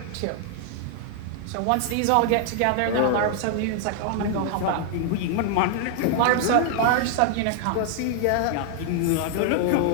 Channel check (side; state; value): both; different; correlation 0.00